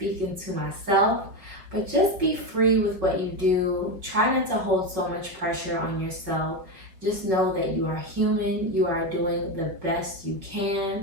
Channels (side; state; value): left; late; 5.6 ms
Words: to myself. But just be free with what you do. Try not to hold so much pressure on yourself. Just know that you are human. You are doing the best you